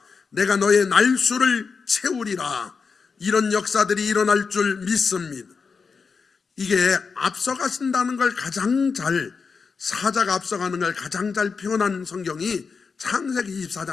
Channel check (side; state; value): right; quieter; 5.2 dB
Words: 내가 너의 날수를 채우리라. 이런 역사들이 일어날 줄 믿습니다. 이게 앞서가신다는 걸 가장 잘, 사자가 앞서가는 걸 가장 잘 표현한 성경이 창세기